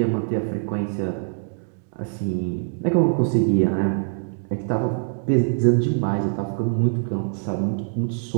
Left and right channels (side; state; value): left; silent; digital silence